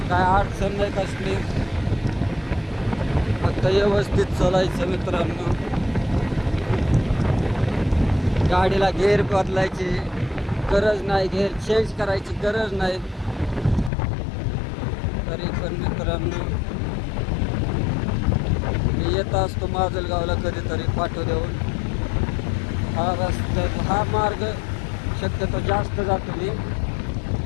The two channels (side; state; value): right; drops out; at 13.9 s